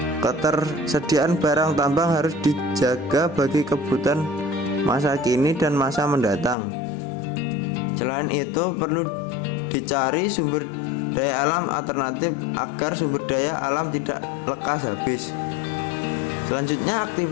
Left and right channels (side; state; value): right; drops out; at 6.6 s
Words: Ketersediaan barang tambang harus dijaga bagi kebutuhan masa kini dan masa mendatang. Selain itu, perlu dicari sumber daya alam alternatif agar sumber daya alam tidak lekas habis. Selanjutnya,